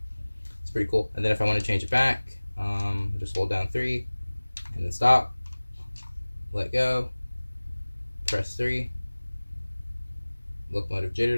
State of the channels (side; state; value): both; inverted; correlation -1.00